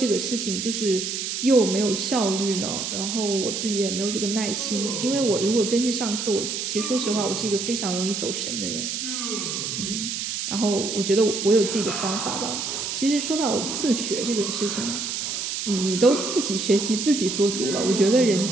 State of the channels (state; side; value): noise; right; hiss, 3 dB below the sound